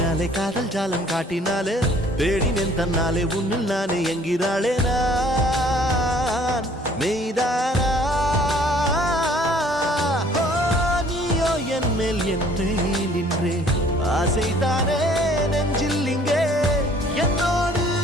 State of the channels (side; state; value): both; normal; correlation 0.56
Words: காதல் ஜாலம் காட்டினாலே தேடினேன் தன்னாலே உன்னில் நானே என்கிறாளே நான் மெய்தானா நீயோ என் மேல் என்றே நின்றே ஆசைதானே